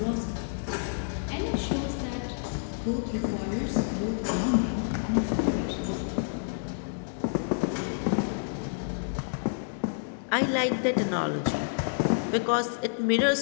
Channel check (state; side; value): silent; right; digital silence